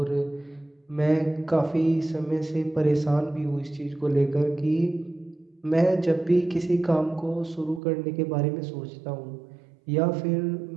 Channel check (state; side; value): drops out; left; at 7.8 s